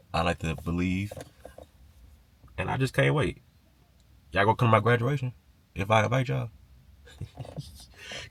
I like to believe, and I just can't wait. Y'all gonna come to my graduation if I invite y'all?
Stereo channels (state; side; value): identical; both; correlation 1.00